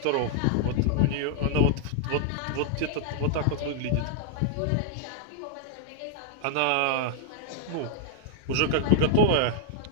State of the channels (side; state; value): both; different; correlation -0.01